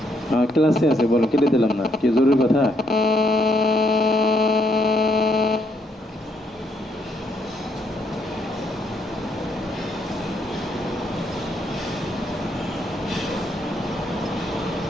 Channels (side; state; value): both; normal; correlation 0.73